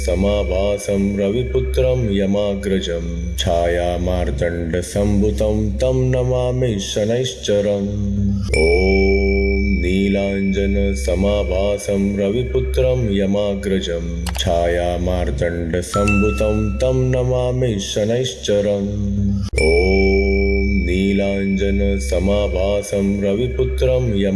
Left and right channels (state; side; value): identical; both; correlation 1.00